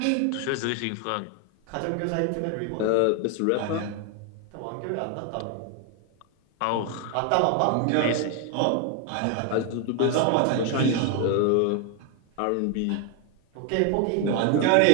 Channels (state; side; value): different; both; correlation 0.01